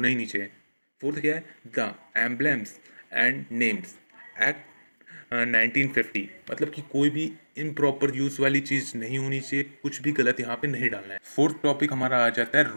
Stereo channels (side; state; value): both; inverted; correlation -1.00